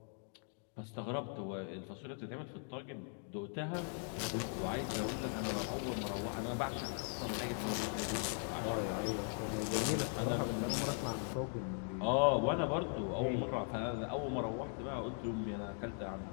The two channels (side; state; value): right; silent; 51 dB below the other